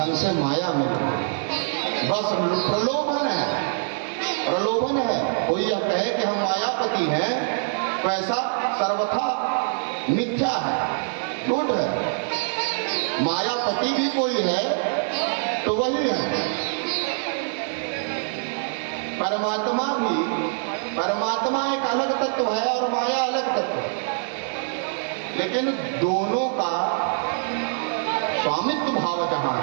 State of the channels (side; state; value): left; silent; digital silence